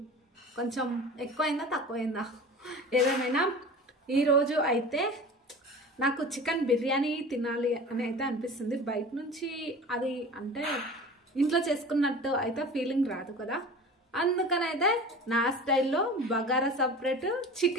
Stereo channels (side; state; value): both; normal; correlation 0.37